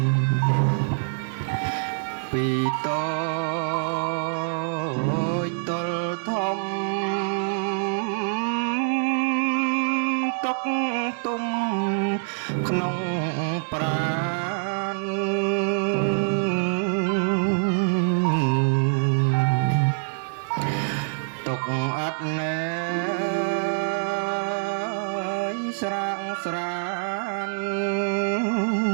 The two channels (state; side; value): silent; left; digital silence